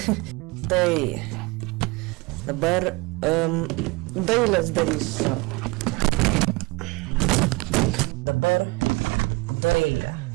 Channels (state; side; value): quieter; left; 25.1 dB